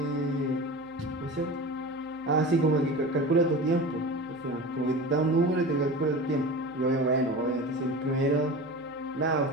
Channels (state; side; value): noise; right; hum, 30 dB below the sound